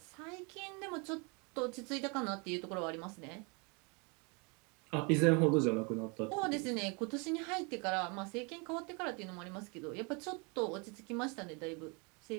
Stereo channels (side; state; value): left; quieter; 31.7 dB